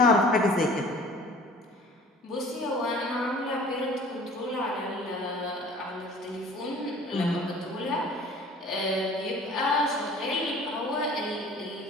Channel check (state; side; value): normal; both; correlation 0.48